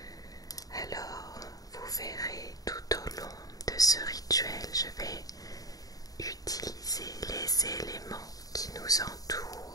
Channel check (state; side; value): late; right; 0.18 ms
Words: Alors, vous verrez tout au long de ce rituel, je vais utiliser les éléments qui nous